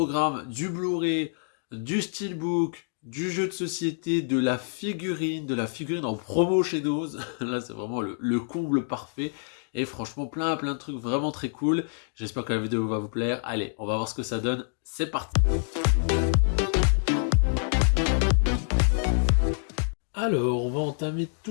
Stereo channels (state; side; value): silent; right; digital silence